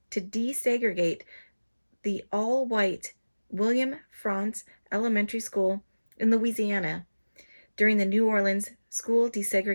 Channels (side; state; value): both; inverted; correlation -1.00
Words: to desegregate the all-white William Frantz Elementary School in Louisiana during the New Orleans school